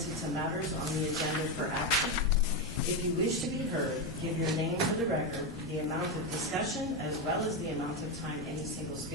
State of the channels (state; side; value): normal; both; correlation 0.10